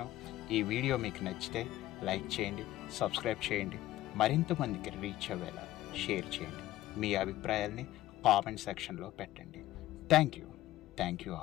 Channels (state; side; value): quieter; right; 15.0 dB